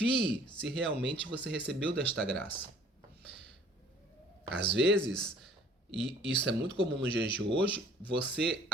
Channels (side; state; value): both; normal; correlation 0.54